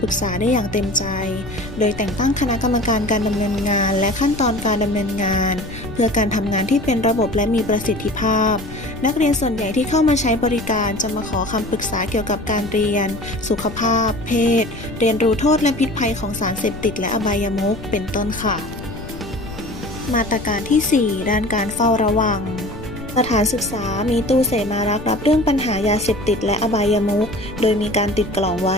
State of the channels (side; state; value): left; noise; rumble, 13 dB below the sound